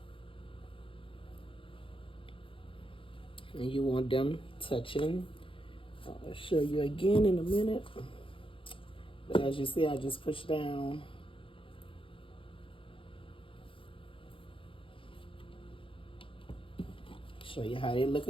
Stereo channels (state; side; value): late; right; 0.25 ms